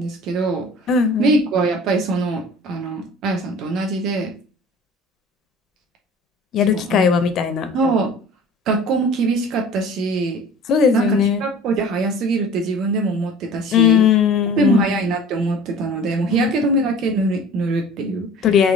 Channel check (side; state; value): both; normal; correlation 0.44